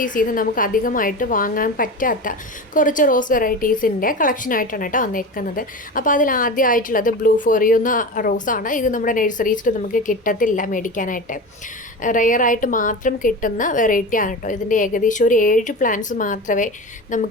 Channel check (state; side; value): normal; both; correlation 0.27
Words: നിന്ന് നമുക്ക് അധികമായിട്ട് വാങ്ങാൻ പറ്റാത്ത കുറച്ച് റോസ് വെറൈറ്റീസിൻ്റെ കളക്ഷനായിട്ടാണ് കേട്ടോ വന്നിരിക്കുന്നത്. അപ്പോൾ അതിൽ ആദ്യമായിട്ടുള്ളത് ബ്ലൂ ഫോറിയോ എന്ന റോസാണ്. ഇത് നമ്മുടെ നഴ്സറീസിൽ നമുക്ക് കിട്ടത്തില്ല, മേടിക്കാനായിട്ട് റെയറായിട്ട് മാത്രം കിട്ടുന്ന വെറൈറ്റിയാണ് കേട്ടോ. ഇതിൻ്റെ ഏകദേശം ഒരു 7 പ്ലാന്റ്സ് മാത്രമേ